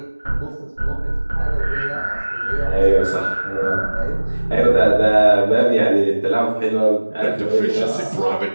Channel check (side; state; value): both; inverted; correlation -1.00